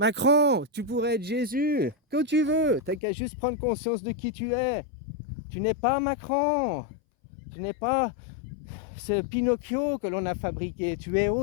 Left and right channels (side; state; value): right; drops out; at 3.0 s